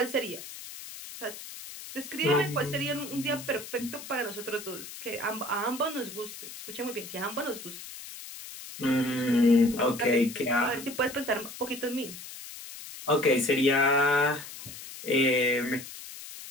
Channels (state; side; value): noise; left; hiss, 13 dB below the sound